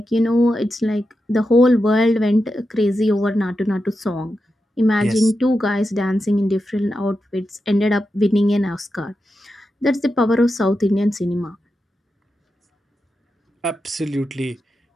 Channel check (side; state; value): both; normal; correlation 0.89